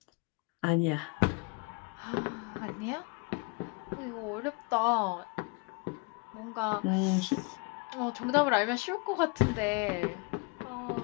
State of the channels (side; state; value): right; quieter; 30.0 dB